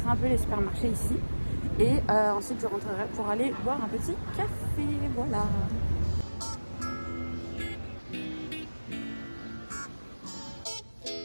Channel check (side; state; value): both; inverted; correlation -1.00